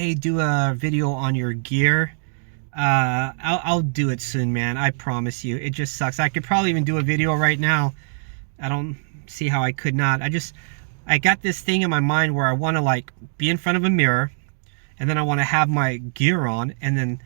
do a video on your gear. I'll do it soon, man. I promise you. It just sucks. I could probably even do a video right now. I don't see how I could not. I got this thing in my mind where I want to like be in front of a mirror, and then I want to have my gear on and then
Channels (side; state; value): left; silent; digital silence